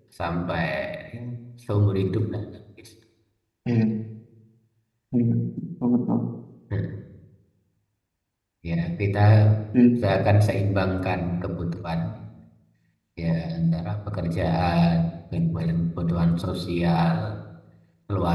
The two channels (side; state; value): both; identical; correlation 1.00